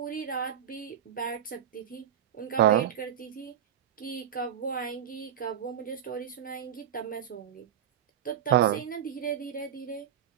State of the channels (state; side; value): quieter; left; 9.6 dB